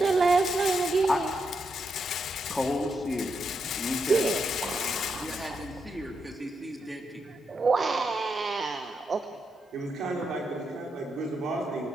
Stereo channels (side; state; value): both; normal; correlation 0.83